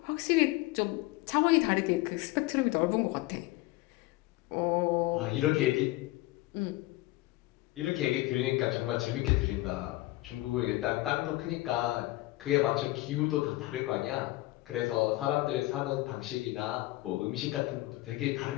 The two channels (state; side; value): quieter; right; 19.2 dB